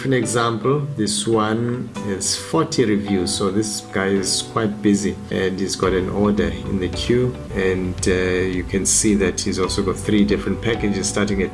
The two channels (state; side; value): identical; both; correlation 1.00